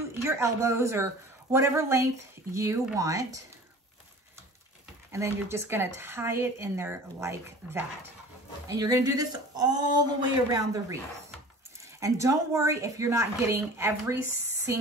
your elbows or whatever length you want. And then you're just gonna tie it in there like that. And you're gonna do this all the way around the wreath. And don't worry if you're not getting every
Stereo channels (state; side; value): normal; both; correlation 0.42